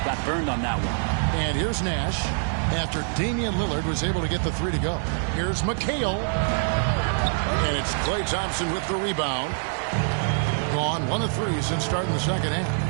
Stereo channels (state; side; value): silent; left; 62 dB below the other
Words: Got burned on that one. And here's Nash after Damian Lillard was able to get the 3 to go. Here's McHale. And it's Klay Thompson with the rebound. Gone 1 of 3 since starting the second half.